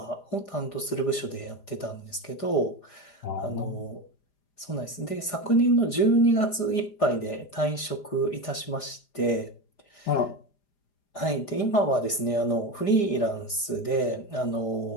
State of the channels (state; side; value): late; right; 4.9 ms